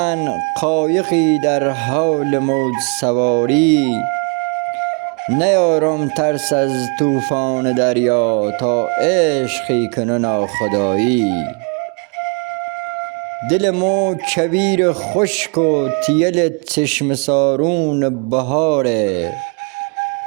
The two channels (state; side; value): quieter; left; 35.8 dB